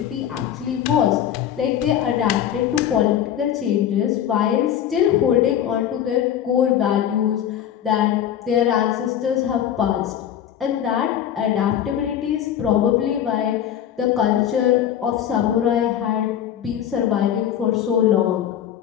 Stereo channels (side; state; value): right; quieter; 10.1 dB